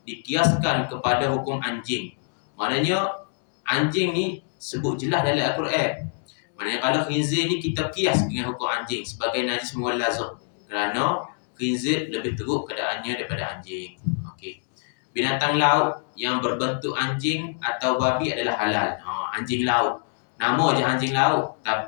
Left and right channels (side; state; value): right; silent; 62 dB below the other